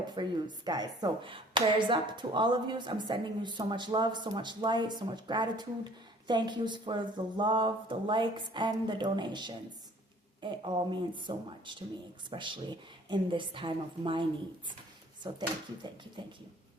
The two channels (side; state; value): both; normal; correlation 0.54